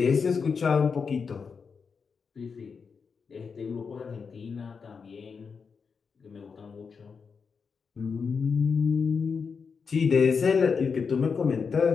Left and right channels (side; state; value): right; quieter; 5.6 dB